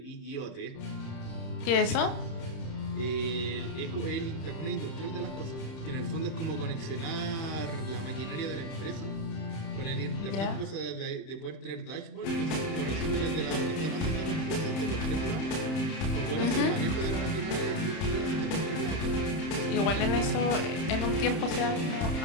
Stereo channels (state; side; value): late; right; 31 ms